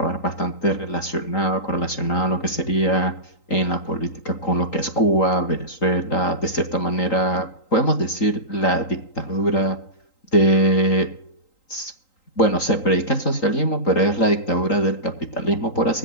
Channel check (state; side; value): late; right; 3.9 ms